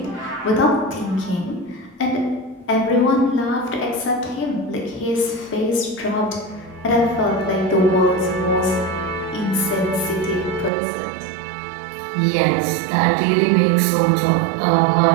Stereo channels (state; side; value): drops out; left; at 10.7 s